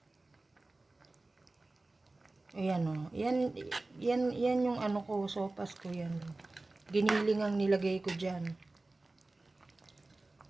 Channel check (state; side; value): quieter; left; 3.1 dB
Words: Ayan, o. Yan yung ko, sopas ko yan. Giniling ang nilagay ko dyan.